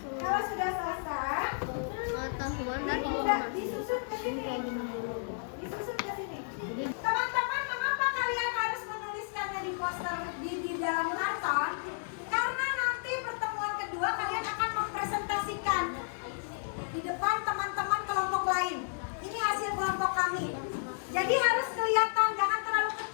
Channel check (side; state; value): right; silent; digital silence